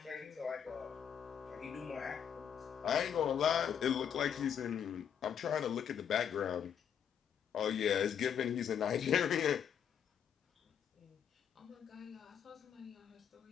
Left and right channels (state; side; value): quieter; right; 8.3 dB